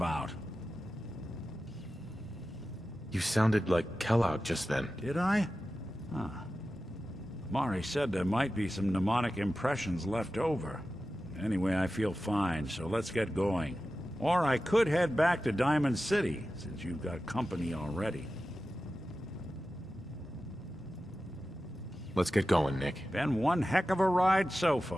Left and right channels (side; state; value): both; normal; correlation 0.94